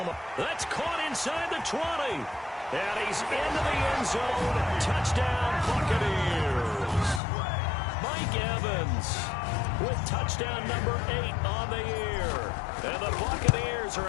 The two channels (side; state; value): right; drops out; at 7.2 s